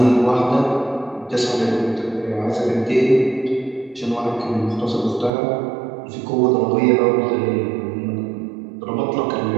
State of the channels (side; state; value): left; drops out; at 5.3 s